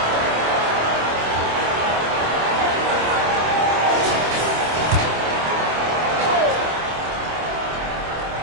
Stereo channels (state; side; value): late; left; 26 ms